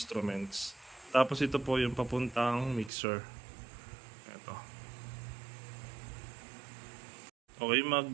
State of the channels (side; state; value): left; drops out; at 2.9 s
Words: Tapos ito po yung papuntang mixer. Ito. Okay,